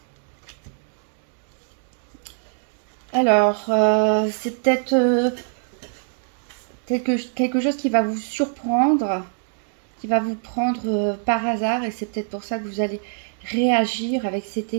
Alors c'est peut-être quelque chose qui va vous surprendre, qui va vous prendre par hasard, et c'est peut-être pour ça que vous allez réagir avec cette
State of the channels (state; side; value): silent; left; digital silence